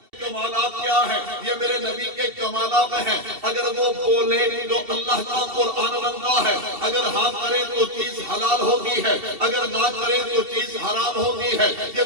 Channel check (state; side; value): late; left; 2.7 ms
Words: کمالات کیا ہے؟ یہ میرے نبی کے کمالات ہیں۔ اگر وہ بولے تو اللہ کا قرآن بنتا ہے، اگر ہاں کرے تو چیز حلال ہوتی ہے، اگر نہ کرے تو چیز حرام ہوتی ہے۔ یہ